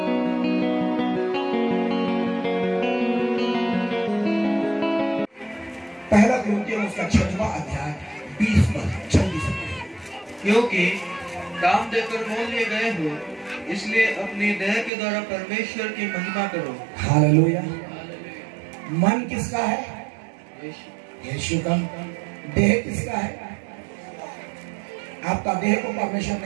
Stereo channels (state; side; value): drops out; left; at 14.9 s